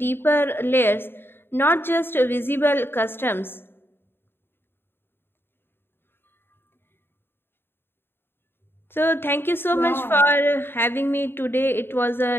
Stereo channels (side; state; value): right; late; 0.11 ms